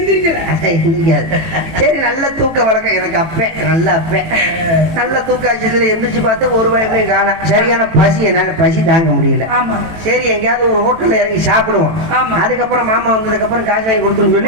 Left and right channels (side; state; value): left; late; 18 ms